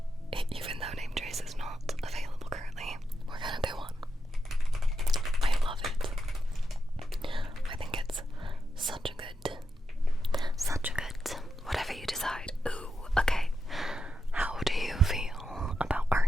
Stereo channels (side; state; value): both; normal; correlation 0.86